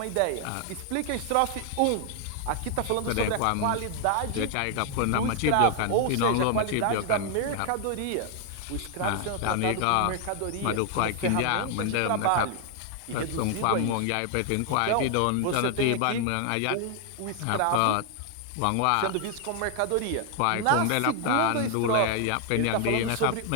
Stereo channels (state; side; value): different; both; correlation 0.00